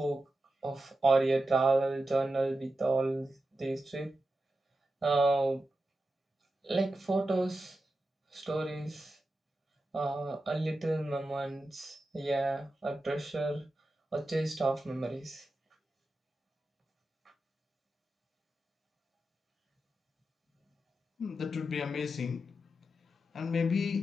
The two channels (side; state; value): both; normal; correlation 0.90